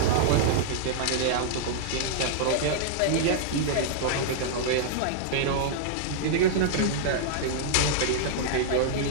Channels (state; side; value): different; both; correlation -0.01